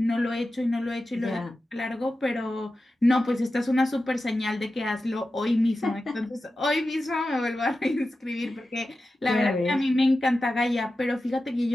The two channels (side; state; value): both; normal; correlation 0.93